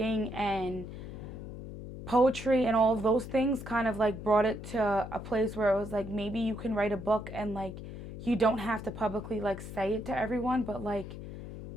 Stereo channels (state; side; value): noise; left; hum, 10 dB below the sound